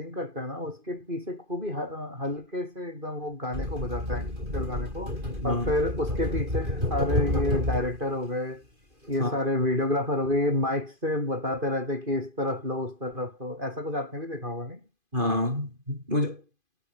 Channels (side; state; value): left; late; 2.5 ms